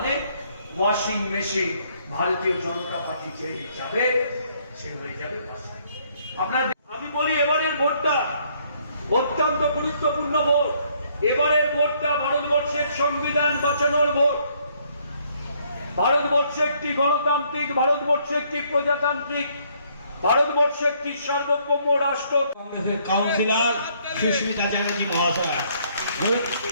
ওয়াশিং মেশিন ভারতীয় জনতা পার্টি যে যাবে সে হয়ে যাবে। আপনার আমি বলি এবারের ভোটটা অত্যন্ত গুরুত্বপূর্ণ ভোট। এবারের ভোটটা ভারতবর্ষের সংবিধান বাঁচানোর ভোট। ভারতবর্ষ একটি গণতান্ত্রিক, ভারতবর্ষ একটি প্রজাতান্ত্রিক, ভারতবর্ষ একটি সার্বভৌম রাষ্ট্র। কংগ্রেসের কাউন্সিলর সুস্মিতা চ্যাটার্জি মহাশয়,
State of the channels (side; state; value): both; inverted; correlation -0.67